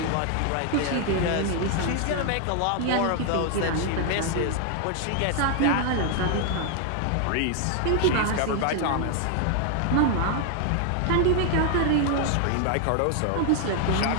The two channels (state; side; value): different; both; correlation 0.00